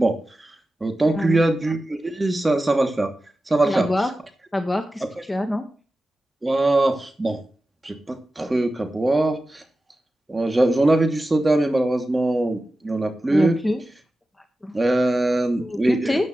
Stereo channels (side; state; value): both; normal; correlation 0.94